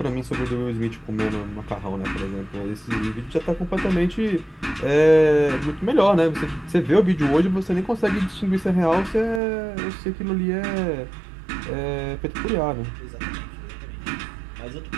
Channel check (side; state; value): left; drops out; at 9.4 s